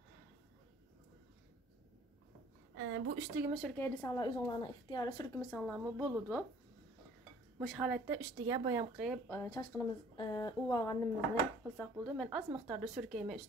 Bu üstüge sürkeydi sanlar özünlərinin ixtiyarı sürkümü sanlarımı buludu. Muş halətdə üstüge bayam qıyıb çaşqınımız uvağanımızı qılsaq buldu. Mən az miqdarda sürkeyimə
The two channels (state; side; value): normal; both; correlation 0.54